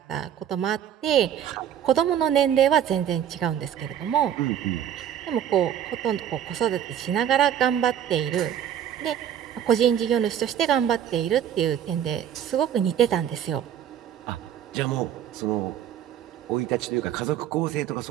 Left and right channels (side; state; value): left; quieter; 9.9 dB